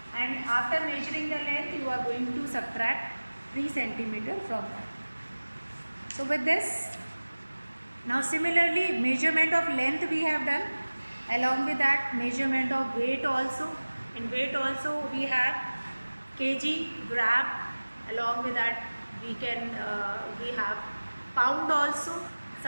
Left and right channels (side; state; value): both; inverted; correlation -1.00